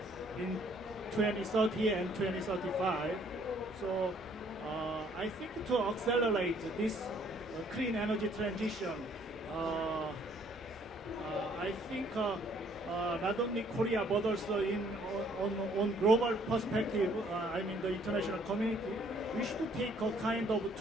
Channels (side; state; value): both; normal; correlation 0.63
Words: 2030 and 2035. So I think to accelerate this clean energy transition, I think not only Korea but also on global perspective, I mean the international community, we should take a kind of